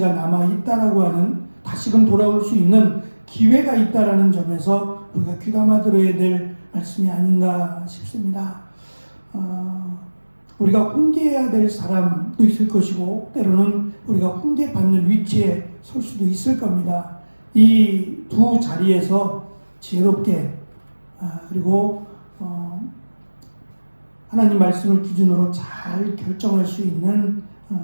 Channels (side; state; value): both; inverted; correlation -1.00